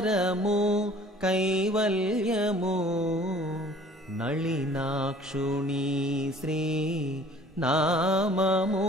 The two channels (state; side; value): normal; both; correlation 0.51